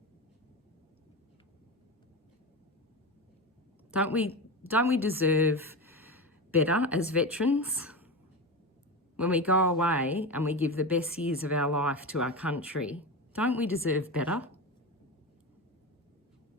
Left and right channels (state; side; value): normal; both; correlation 0.22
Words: Don't we deserve better as veterans? When we go away and we give the best years of our life to our country, don't we deserve better?